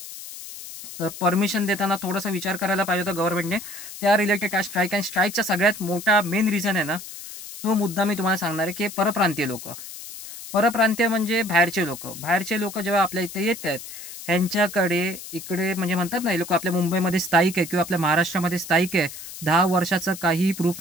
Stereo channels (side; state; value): left; noise; hiss, 12 dB below the sound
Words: तर परमिशन देताना थोडासा विचार करायला पाहिजे होता गव्हर्नमेंटने. त्या रिलेटेड स्ट्राईक आणि स्ट्राईकचा सगळ्यात मोठा मेन रिझन आहे ना, तो मुद्दा मी तुम्हाला सांगणार आहे, की परप्रांतीय लोक. परप्रांतीय म्हणजे बाहेरचे लोक जेव्हा आपल्या इथे येत आहेत, ह्यांच्याकडे इकडे म्हणजे म्हणतात ना, हे लोक आपल्या मुंबईमध्ये स्थायिक आहे किंवा आपल्या महाराष्ट्रामध्ये स्थायिक आहे, 10 वर्षाचं काहीही प्रूफ